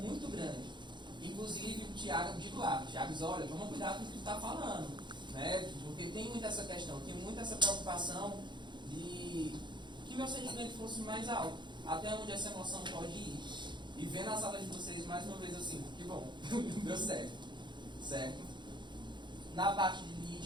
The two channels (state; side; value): late; left; 0.22 ms